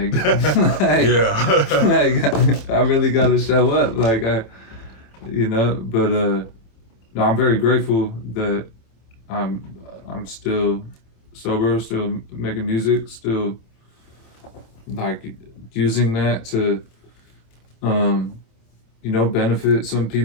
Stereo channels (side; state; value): right; late; 27 ms